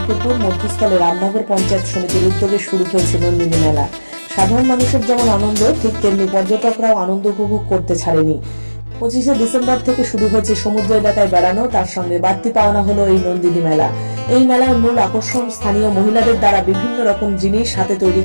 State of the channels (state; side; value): inverted; both; correlation -1.00